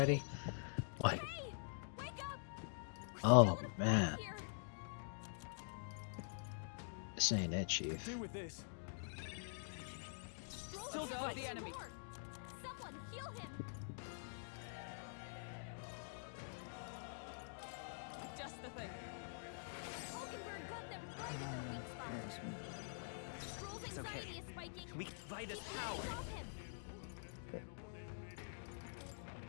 Like, Hey! Wake up! We're oh still in a man, fight here. this ain't it, Chief. Do with this. Stroll Still can't got fight the enemy. anymore. Someone heal him. Just the thing. Hulkenberg got them right in their weak spot. Stroll's anxiety is spiking. We can fight his Keep the power. enemies off him.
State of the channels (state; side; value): silent; right; digital silence